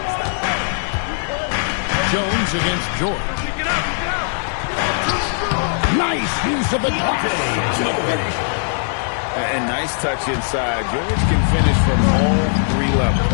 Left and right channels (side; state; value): right; silent; digital silence